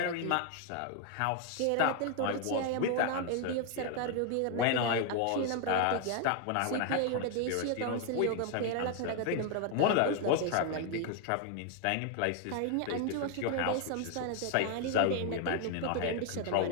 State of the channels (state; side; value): different; both; correlation 0.00